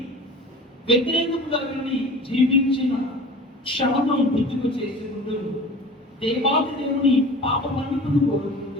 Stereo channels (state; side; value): normal; both; correlation 0.39